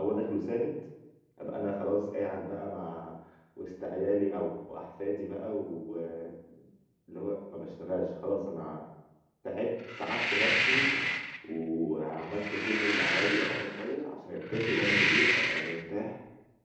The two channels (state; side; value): identical; both; correlation 1.00